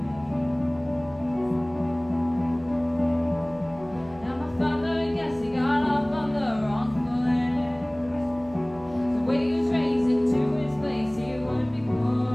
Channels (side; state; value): right; noise; hum, 22 dB below the sound